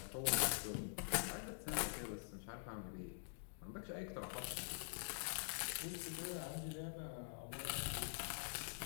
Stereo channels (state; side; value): silent; right; digital silence